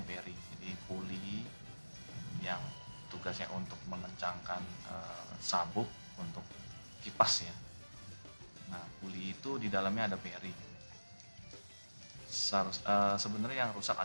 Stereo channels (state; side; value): inverted; both; correlation -1.00